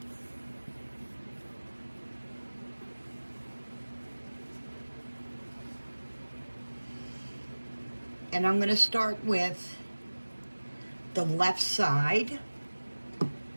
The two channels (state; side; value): inverted; both; correlation -1.00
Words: And I'm going to start with the left side,